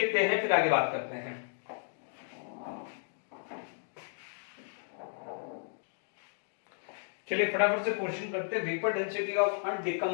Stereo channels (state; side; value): silent; right; digital silence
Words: हैं फिर आगे बात करते हैं। चलिए फटाफट से क्वेश्चन करते हैं। Vapour density of